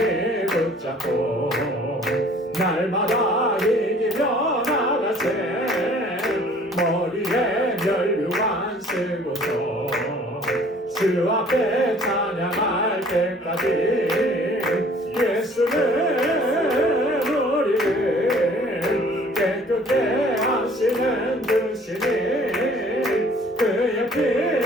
붙잡고 날마다 이기며 나가세. 머리에 면류관 쓰고서 주 앞에 찬양할 때까지 예수는 우리를 깨끗게 하시는 주시니 그의 피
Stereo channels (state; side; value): normal; both; correlation 0.54